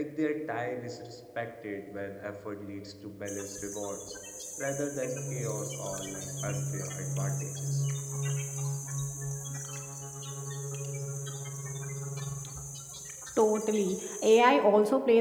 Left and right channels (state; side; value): identical; both; correlation 1.00